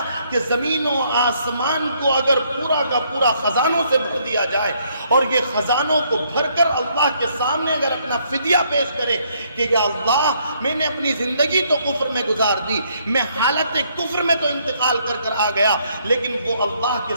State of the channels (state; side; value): inverted; both; correlation -0.69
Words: کہ زمین و آسمان کو اگر پورا کا پورا خزانوں سے بھر دیا جائے اور یہ خزانوں کو بھر کر اللہ کے سامنے اگر اپنا فدیہ پیش کرے کہ یا اللہ میں نے اپنی زندگی تو کفر میں گزار دی، میں حالت کفر میں تو انتقال کر آ گیا، لیکن وہ اللہ کے